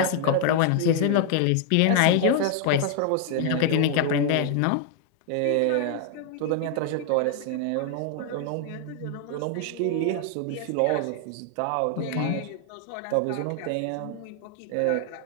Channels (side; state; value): both; different; correlation 0.00